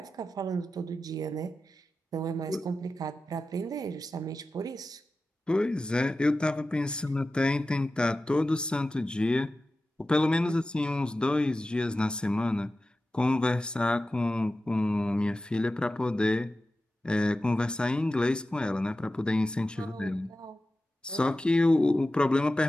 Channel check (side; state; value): both; normal; correlation 0.94